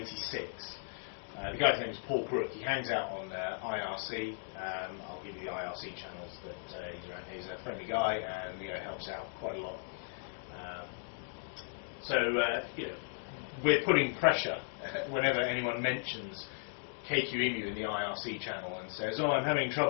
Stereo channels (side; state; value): right; silent; digital silence